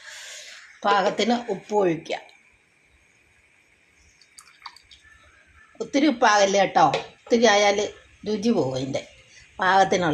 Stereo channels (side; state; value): both; identical; correlation 1.00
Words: പാകത്തിന് ഉപ്പ് ഒഴിക്കുക. ഒത്തിരി ഉപ്പാകല്ലേ കേട്ടോ, ഒത്തിരി ആയാൽ രുചി പോകും. അതിൻ്റെ